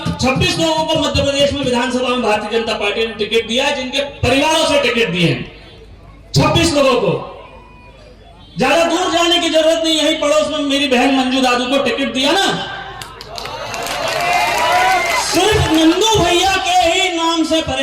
को मध्य प्रदेश में विधानसभा में भारतीय जनता पार्टी ने टिकट दिया है, जिनके परिवारों से टिकट दिए हैं 26 लोगों को। ज्यादा दूर जाने की जरूरत नहीं, यही पड़ोस में मेरी बहन मंजू दादू को टिकट दिया ना। सिर्फ नंदू भैया के ही नाम से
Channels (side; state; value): both; identical; correlation 1.00